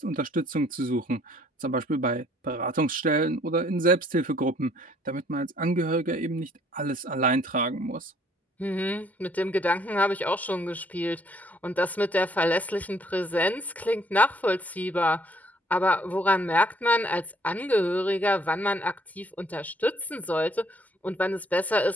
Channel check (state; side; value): normal; both; correlation 0.63